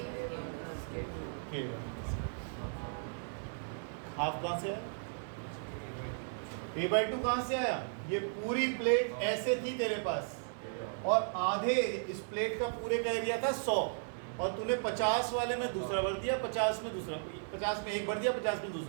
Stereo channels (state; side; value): silent; left; digital silence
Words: K1। हाफ कहाँ से आया? A by 2 कहाँ से आया? ये पूरी प्लेट ऐसे थी तेरे पास, और आधे इस प्लेट का पूरे का एरिया था 100, और तूने 50 वाले में दूसरा भर दिया, 50 में दूसरा, 50 में एक भर दिया, 50 में